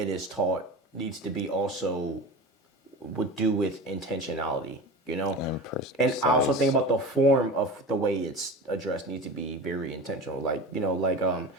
is taught needs to be also would do with intentionality, you know? And I also think about the form of the way it's addressed needs to be very intentional. Like, you know, like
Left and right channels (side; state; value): both; normal; correlation 0.31